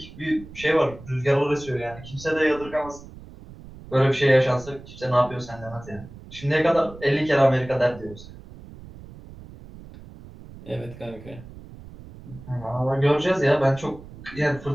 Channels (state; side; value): noise; right; rumble, 17 dB below the sound